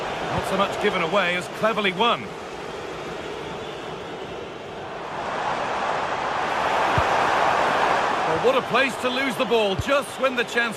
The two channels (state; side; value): identical; both; correlation 1.00